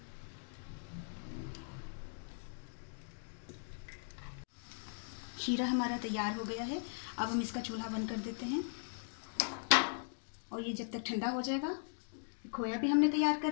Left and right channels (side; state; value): right; silent; digital silence